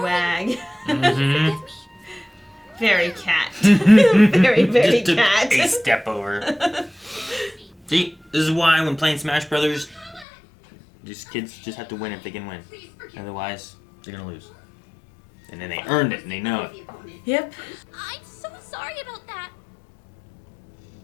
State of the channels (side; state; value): right; drops out; at 10.2 s